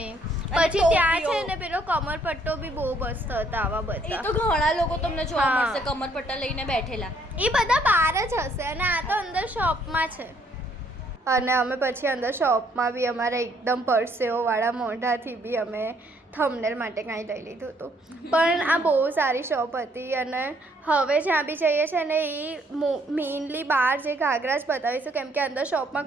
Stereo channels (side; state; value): both; normal; correlation 0.67